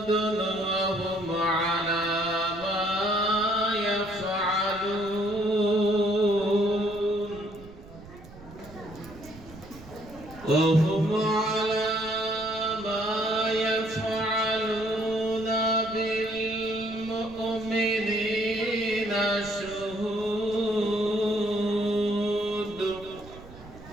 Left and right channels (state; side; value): noise; right; rumble, 18 dB below the sound